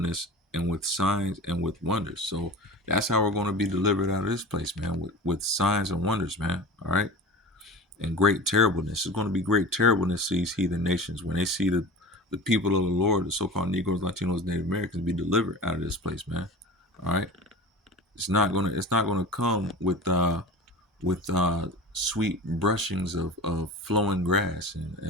and with signs and with wonders. So that's how we're going to be delivered out of this place, man, with signs and wonders, man. All right. And great terribleness. It's going to be great terribleness to these heathen nations when they see the people of the Lord, the so-called Negroes, Latinos, Native Americans, be delivered out of this place, man. All right. It's not gonna come with sweet brushings of flowing grass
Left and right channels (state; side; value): normal; both; correlation 0.34